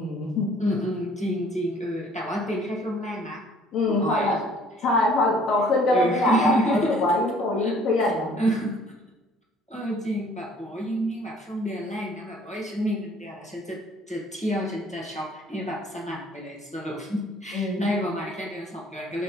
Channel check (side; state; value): both; normal; correlation 0.56